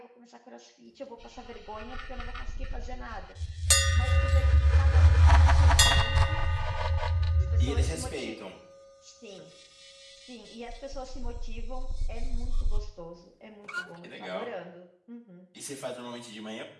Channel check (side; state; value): both; identical; correlation 1.00